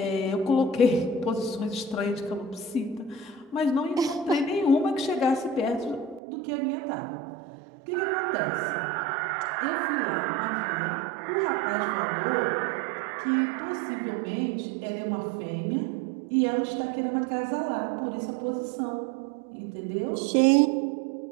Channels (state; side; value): drops out; left; at 6.2 s